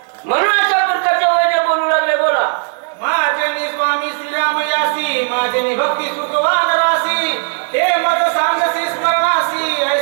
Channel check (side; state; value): left; silent; 57 dB below the other